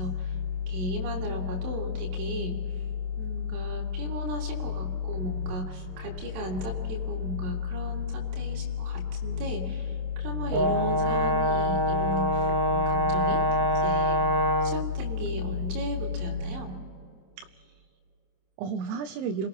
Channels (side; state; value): left; late; 27 ms